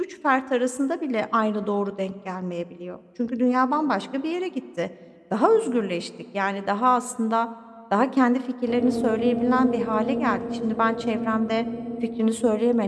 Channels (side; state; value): both; identical; correlation 1.00